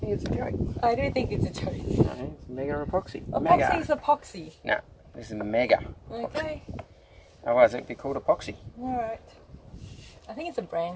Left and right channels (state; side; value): identical; both; correlation 1.00